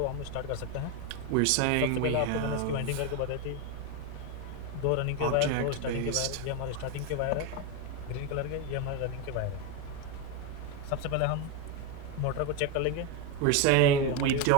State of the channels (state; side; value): different; both; correlation 0.03